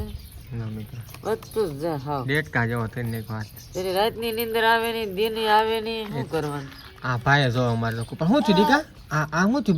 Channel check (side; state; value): both; identical; correlation 1.00